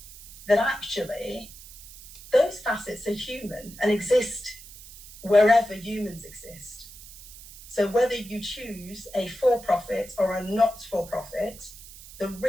that actually those facets are human and exist wherever humans exist. So whether you choose a for-profit or a not-for-profit, the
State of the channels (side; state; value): right; noise; hiss, 17 dB below the sound